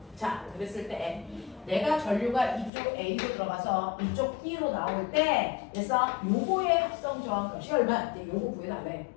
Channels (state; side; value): drops out; right; at 2.7 s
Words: 자, 그랬을 때 내가 전류가 이쪽 A로 들어가서 이쪽 B로 나올 때 됐어? 요거의 합성 저항값이 얼마? 이제 요거 구해달래.